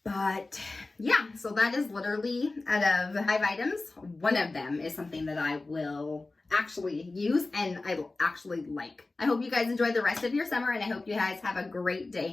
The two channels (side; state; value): right; quieter; 3.3 dB